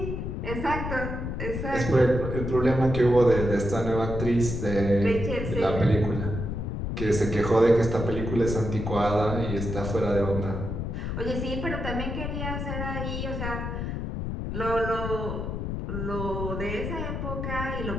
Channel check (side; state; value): left; noise; rumble, 4 dB below the sound